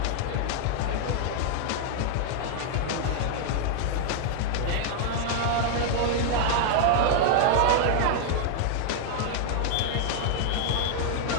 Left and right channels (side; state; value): both; different; correlation -0.01